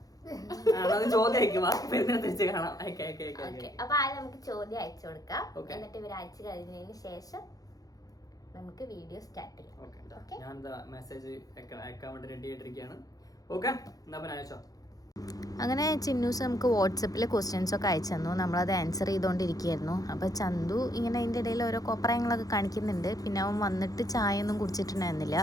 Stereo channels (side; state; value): right; late; 0.18 ms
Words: ചോദ്യം അപ്പൊ ആദ്യം നമുക്ക് ചോദ്യം അയച്ചു കൊടുക്കാം. എന്നിട്ട് ഇവർ അയച്ചു കഴിഞ്ഞതിന് ശേഷം നമുക്ക് വീഡിയോ സ്റ്റാർട്ട് ചെയ്യാം. ഞാൻ മെസ്സേജ് അയക്കാൻ വേണ്ടി റെഡി ആയിട്ടിരിക്കുകയാണ്. ഓക്കെ, എന്നാ പിന്നെ അയച്ചോ. അങ്ങനെ ചിന്നൂസ് നമുക്ക് വാട്സപ്പിൽ ക്വസ്റ്റ്യൻസ് ഒക്കെ അയച്ചു തന്നു. നമ്മളത് ആൻസർ ചെയ്തുകൊണ്ടിരിക്കുകയായിരുന്നു. അപ്പോൾ ചന്തു ഇങ്ങനെ അതിൻ്റെ ഇടയിൽ ഓരോ കോപ്രായങ്ങളൊക്കെ കാണിക്കുന്നുണ്ട്. പിന്നെ അവൻ വന്നിട്ട് ചായ ഒന്നും കുടിച്ചിട്ടുണ്ടായിരുന്നില്ല.